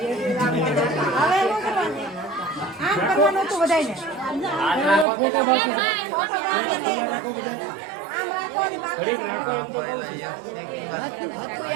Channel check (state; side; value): drops out; left; at 5.1 s